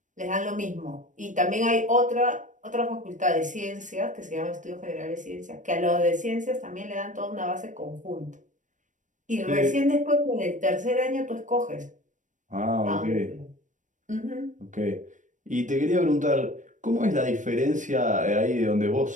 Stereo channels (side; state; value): left; late; 0.37 ms